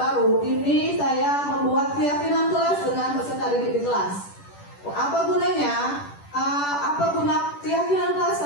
ini saya membuat keyakinan kelas dengan peserta didik di kelas. Apa gunanya? Apa guna keyakinan kelas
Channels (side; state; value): right; late; 10 ms